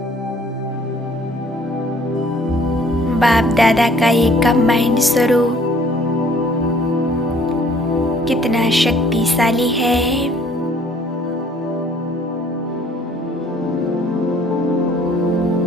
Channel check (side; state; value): both; normal; correlation 0.57